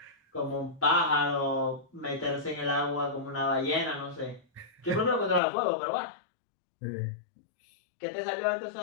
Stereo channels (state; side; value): drops out; right; at 5.4 s